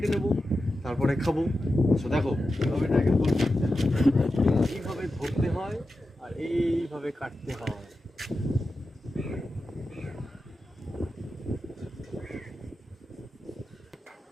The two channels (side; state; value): both; normal; correlation 0.91